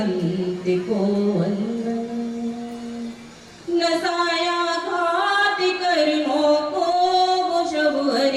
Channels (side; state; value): both; identical; correlation 1.00